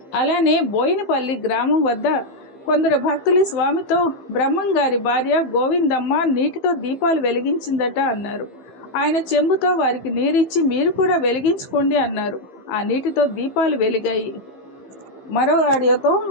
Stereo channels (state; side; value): late; right; 15 ms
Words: అలానే బోయినపల్లి గ్రామం వద్ద కొందరు భక్తులు స్వామితో, బ్రహ్మంగారి భార్య గోవిందమ్మ నీటితో దీపాలు వెలిగించిందట అన్నారు. ఆయన చెంబుతో వారికి నీరిచ్చి, మీరు కూడా వెలిగించుకోండి అన్నారు. ఆ నీటితో దీపాలు వెలిగాయి. మరో ఆడియోతో